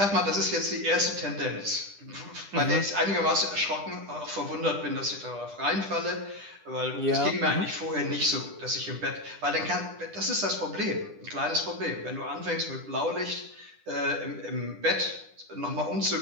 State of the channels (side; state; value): left; late; 10 ms